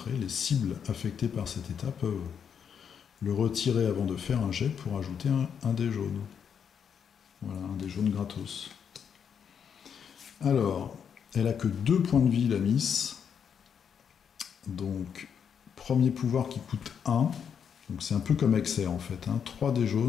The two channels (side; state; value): right; quieter; 7.5 dB